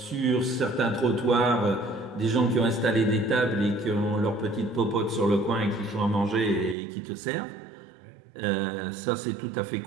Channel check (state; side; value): drops out; left; at 6.8 s